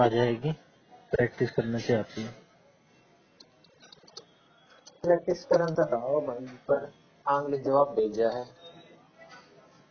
जाएगी, प्रैक्टिस करने से आती है। प्रैक्टिस करन तो रहो भाई, पर आंगली जवाब भेजा है।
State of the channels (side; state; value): both; identical; correlation 1.00